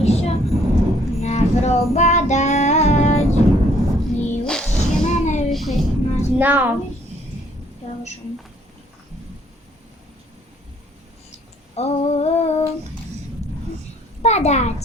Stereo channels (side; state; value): both; normal; correlation 0.63